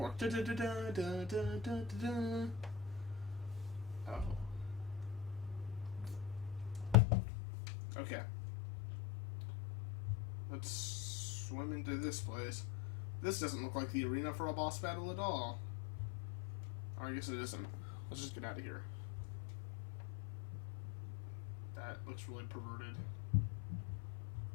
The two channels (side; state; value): right; drops out; at 7.0 s